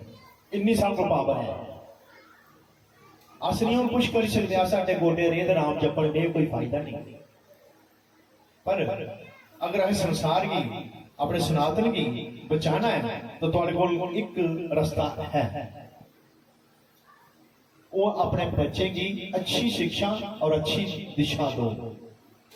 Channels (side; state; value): both; identical; correlation 1.00